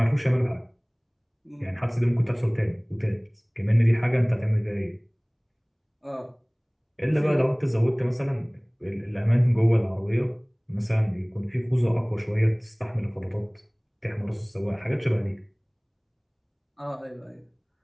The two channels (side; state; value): both; identical; correlation 1.00